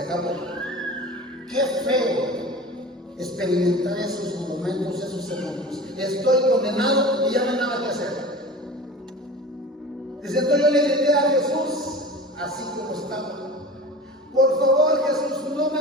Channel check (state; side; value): normal; both; correlation 0.36